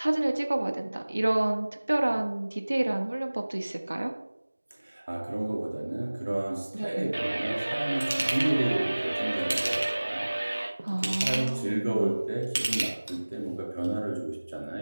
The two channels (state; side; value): inverted; both; correlation -1.00